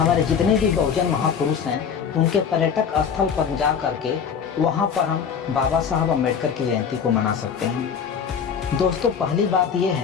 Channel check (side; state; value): right; quieter; 7.0 dB